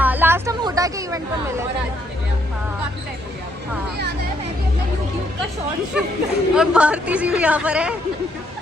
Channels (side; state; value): both; normal; correlation 0.72